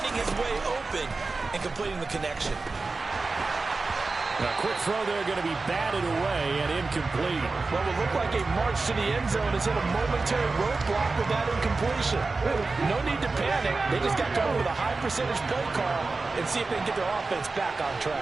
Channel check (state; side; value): quieter; left; 3.8 dB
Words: his way open and completing the connection. A quick throw there going to be batted away and incomplete. Well, it looked like a march to the end zone is in a momentary roadblock with that incompletion. No need to panic. They just got to go with a high percentage play call and see if they can get their offense back on